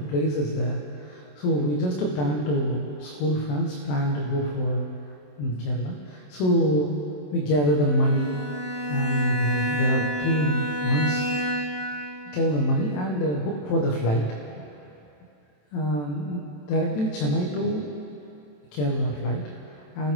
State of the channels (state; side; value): late; right; 27 ms